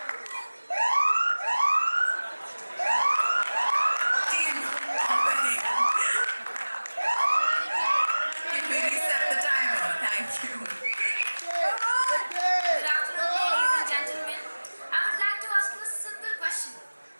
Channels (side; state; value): both; inverted; correlation -1.00